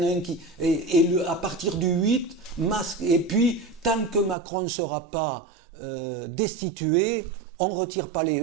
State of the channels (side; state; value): left; drops out; at 4.4 s